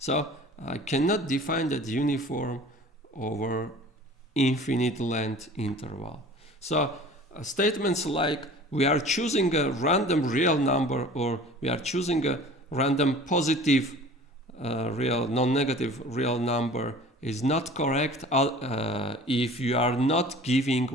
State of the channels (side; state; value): both; normal; correlation 0.44